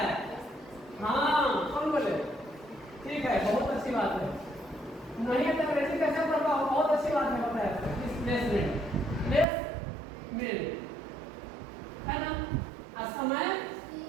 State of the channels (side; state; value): left; drops out; at 9.5 s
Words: हाँ, कौन बोले? ठीक है, बहुत अच्छी बात है। नहीं है तो अंग्रेजी कैसे पढ़ पाओ? बहुत अच्छी बात है, बताया डिस्प्लेसमेंट, है ना। और समय